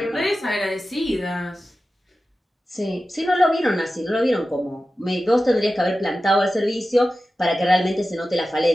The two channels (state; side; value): normal; both; correlation 0.94